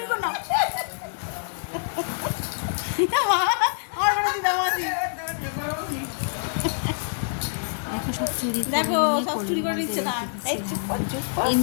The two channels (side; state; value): right; silent; 61 dB below the other